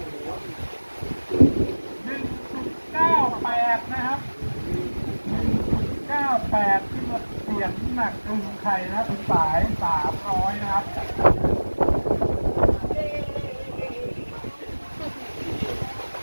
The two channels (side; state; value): both; inverted; correlation -1.00